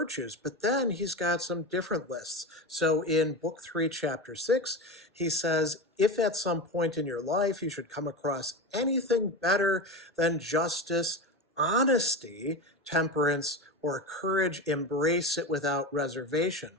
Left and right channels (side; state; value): both; normal; correlation 0.23